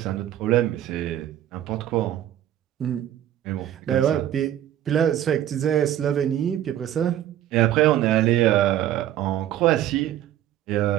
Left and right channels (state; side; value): quieter; left; 11.9 dB